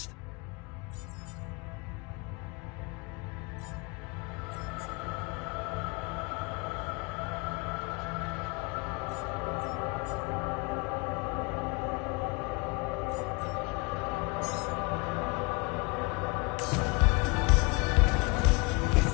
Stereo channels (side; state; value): right; quieter; 27.9 dB